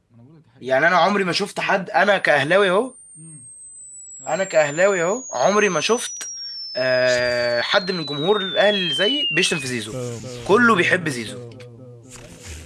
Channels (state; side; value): identical; both; correlation 1.00